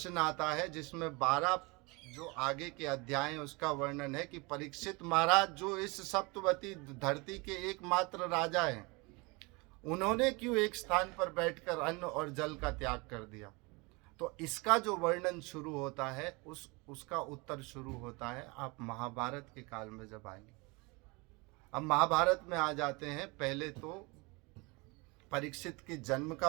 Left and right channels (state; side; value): quieter; left; 27.0 dB